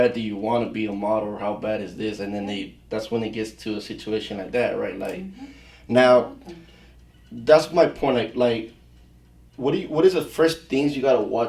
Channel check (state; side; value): identical; both; correlation 1.00